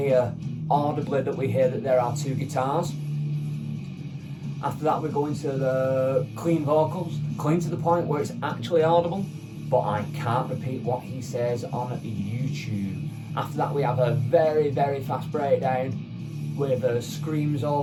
audibly that we hear that there are 2 guitars. After that we go into the clean vocals, clean to the point where it's actually audible, but I can't repeat what he says on YouTube. After that we have a very, very fast breakdown with screams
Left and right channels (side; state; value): both; identical; correlation 1.00